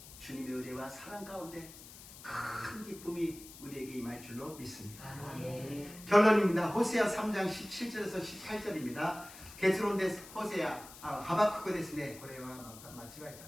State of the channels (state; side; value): noise; left; hiss, 17 dB below the sound